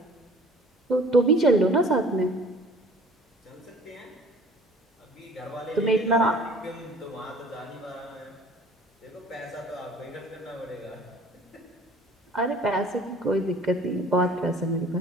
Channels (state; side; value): normal; both; correlation 0.50